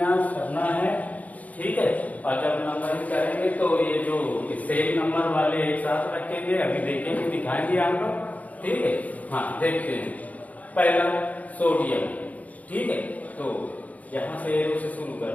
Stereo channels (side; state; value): right; late; 0.073 ms